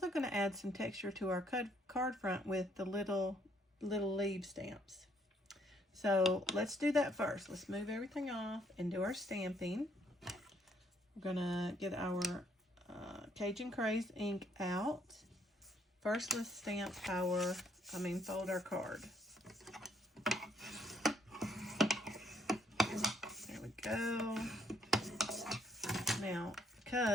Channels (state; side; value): normal; both; correlation 0.68